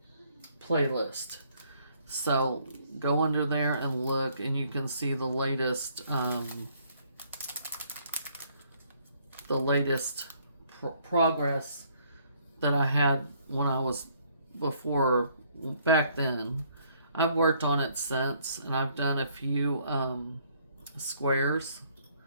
So go under there and look, and you can see the latest progress that I had when I was before back then. I've worked on it since, and I've done a few squares.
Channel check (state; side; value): inverted; both; correlation -0.65